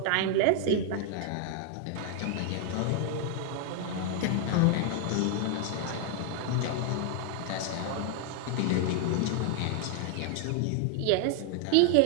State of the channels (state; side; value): different; both; correlation 0.00